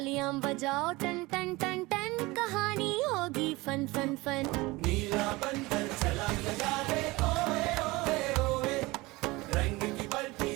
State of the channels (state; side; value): quieter; left; 22.1 dB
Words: बजाओ टन टन टन टन, कहानी होगी फन फन फन। नीला बंदर छलांग लगा रे, ओए ओए ओए, रंग की बल्टी